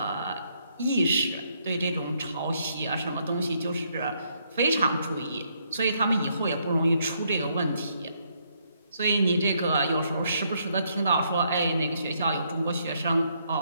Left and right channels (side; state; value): both; inverted; correlation -0.73